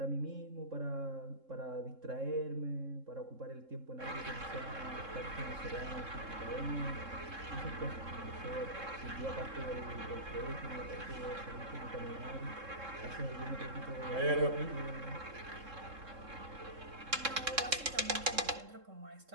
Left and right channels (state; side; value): late; left; 3.7 ms